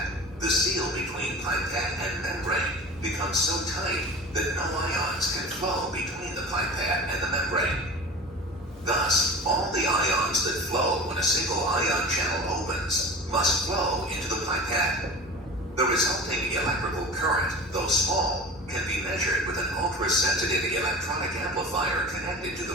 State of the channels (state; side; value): normal; both; correlation 0.35